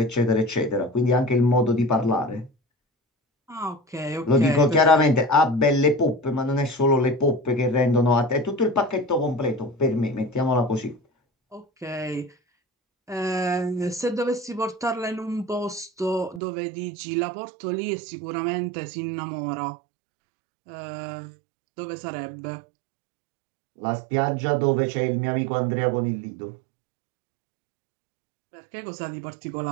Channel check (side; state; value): left; drops out; at 16.4 s